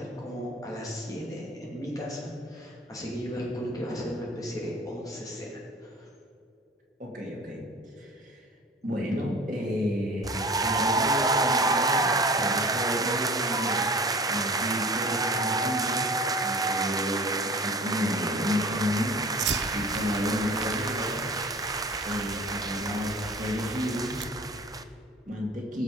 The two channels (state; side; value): normal; both; correlation 0.42